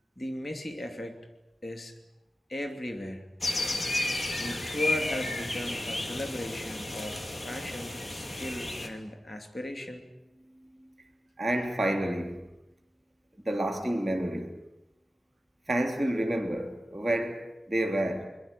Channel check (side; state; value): both; normal; correlation 0.92